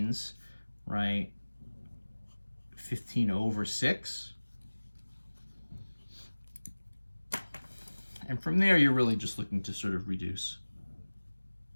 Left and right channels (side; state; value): both; inverted; correlation -1.00